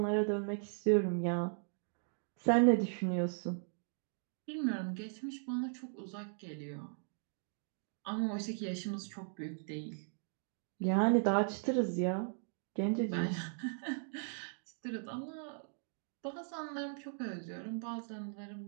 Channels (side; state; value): left; silent; digital silence